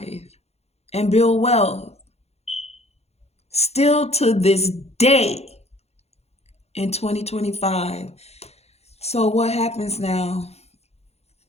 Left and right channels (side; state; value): right; late; 0.31 ms